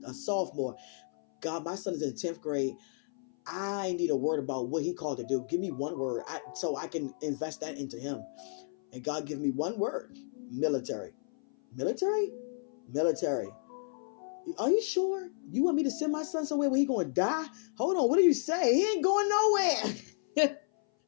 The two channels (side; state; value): right; silent; 56 dB below the other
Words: sophomore. God, my son is in 10th grade. I need a word about what he called to do. Give me one word so I can invest that into him. And God give me one word. Military. Military? Military. Are you sure? You want me to send my son somewhere where he going to die? Hold on. What do you say? He ain't going nowhere.